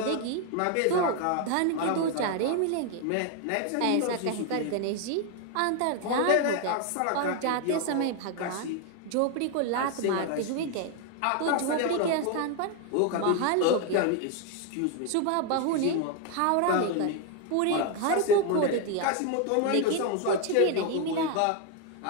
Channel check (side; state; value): both; different; correlation 0.01